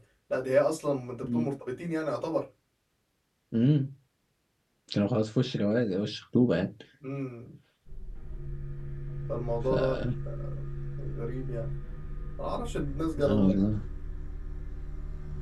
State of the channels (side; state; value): both; identical; correlation 1.00